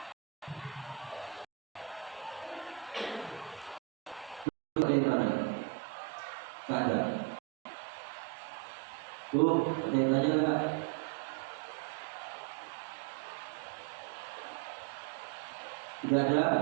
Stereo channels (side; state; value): left; drops out; at 4.5 s